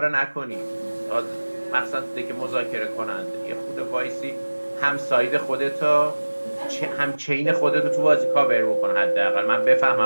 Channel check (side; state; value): both; inverted; correlation -1.00